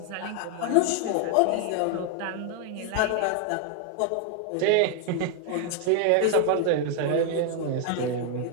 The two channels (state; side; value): different; both; correlation 0.00